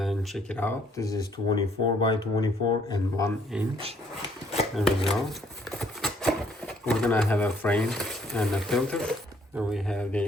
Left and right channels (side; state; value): both; normal; correlation 0.65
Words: check it out. This is 24 by 24 and 1 inch. There we go. We're gonna have a frame and a filter. And we have the